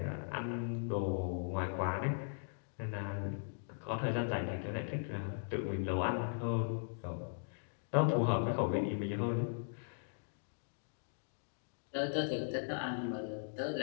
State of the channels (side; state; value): right; silent; digital silence